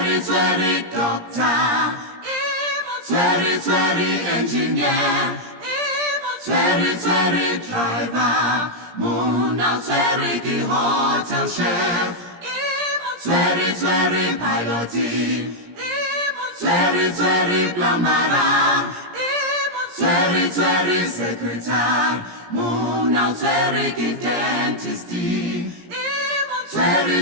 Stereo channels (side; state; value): left; late; 17 ms